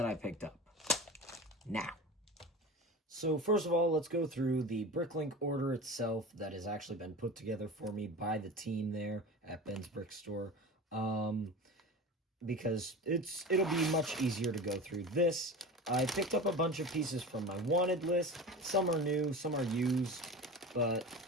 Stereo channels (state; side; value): normal; both; correlation 0.31